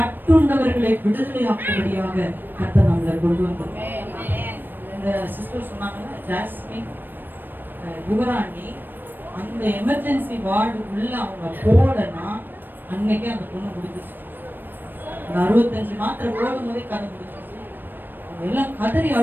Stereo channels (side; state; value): left; late; 0.093 ms